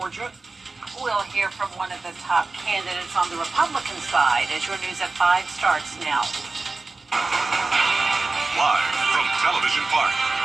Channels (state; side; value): quieter; left; 3.7 dB